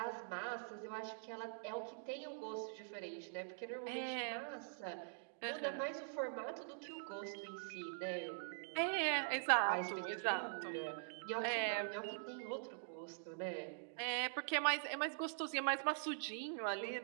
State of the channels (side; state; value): left; silent; digital silence